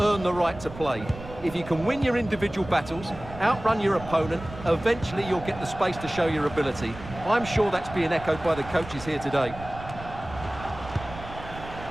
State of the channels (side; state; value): right; noise; rumble, 14 dB below the sound